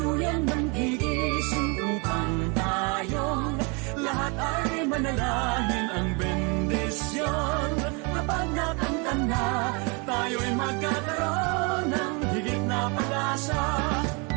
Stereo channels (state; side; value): quieter; left; 31.7 dB